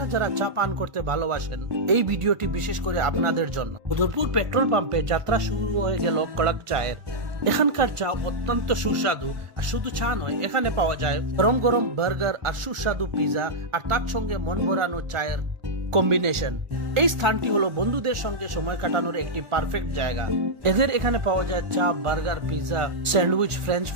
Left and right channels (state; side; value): late; left; 1.5 ms